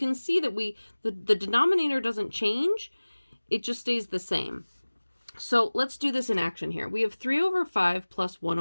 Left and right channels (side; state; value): both; inverted; correlation -1.00